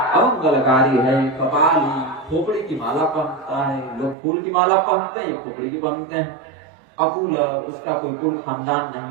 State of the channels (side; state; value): left; drops out; at 4.2 s